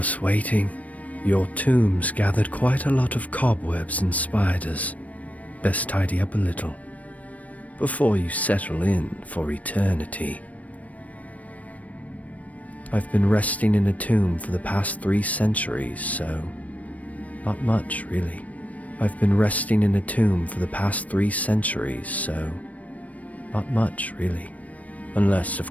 waiting. Your tomb's gathered quite a lot of cobwebs and spiders. Best tidy up a little before you settle in for eternity. I've been resting in a tomb for the past 3 centuries, so not much, really. I've been resting in a tomb for the past 3 centuries, so not much, really. Unless,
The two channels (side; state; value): right; late; 0.069 ms